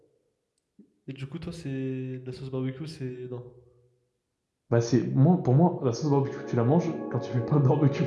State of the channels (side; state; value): both; identical; correlation 1.00